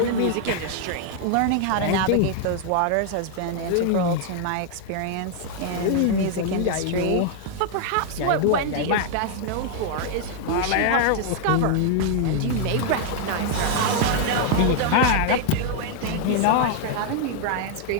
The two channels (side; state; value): both; different; correlation 0.00